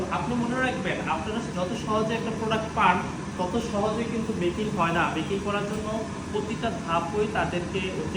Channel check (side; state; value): both; identical; correlation 1.00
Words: আপনি মনে রাখবেন আপনারা যত সহজে একটা প্রোডাক্ট পান তত সহজে কিন্তু মেকিং হয় না। মেকিং করার জন্য প্রতিটা ধাপই তাদেরকে